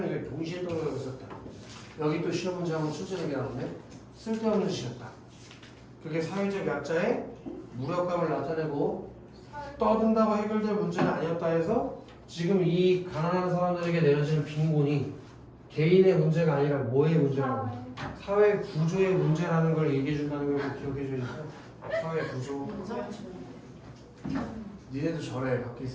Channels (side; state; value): both; identical; correlation 1.00